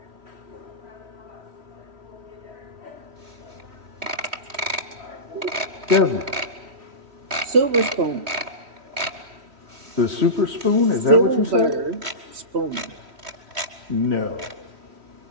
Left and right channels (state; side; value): late; left; 3.1 ms